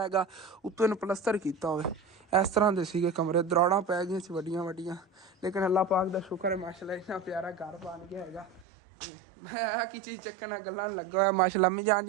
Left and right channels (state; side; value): drops out; left; at 8.7 s